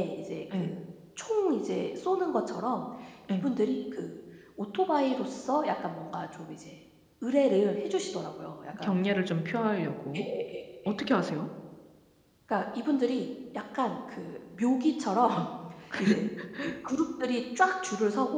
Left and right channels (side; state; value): both; identical; correlation 1.00